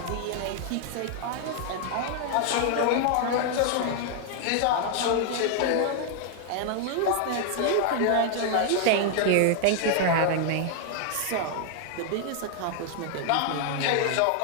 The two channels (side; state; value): both; different; correlation 0.00